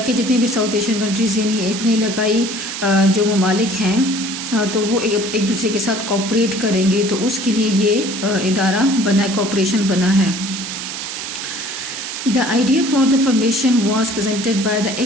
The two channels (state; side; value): noise; right; hiss, 6 dB below the sound